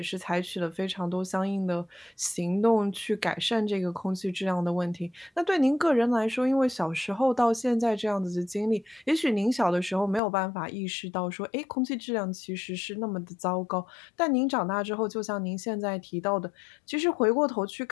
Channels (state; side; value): drops out; right; at 10.2 s